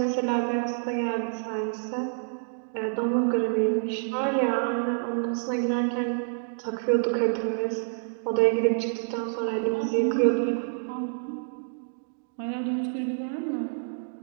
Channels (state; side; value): silent; left; digital silence